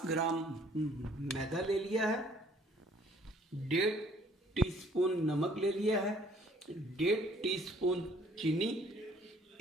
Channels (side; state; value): both; normal; correlation 0.59